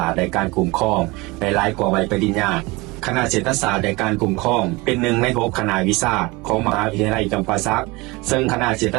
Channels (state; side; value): quieter; left; 23.4 dB